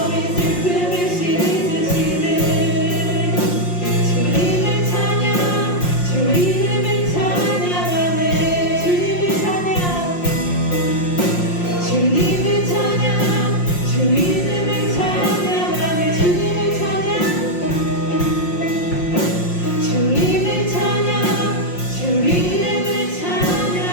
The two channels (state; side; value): late; right; 5.6 ms